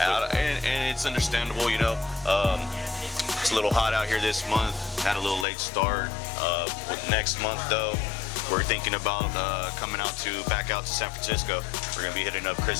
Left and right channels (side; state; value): right; drops out; at 5.5 s